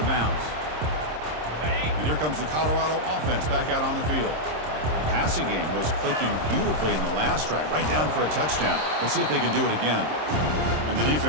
bounds. And here comes the Colorado offense back out on the field. The passing game was clicking beautifully in the last drive, right down for a touchdown. Let's see if they can do it again. And the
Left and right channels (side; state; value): left; late; 26 ms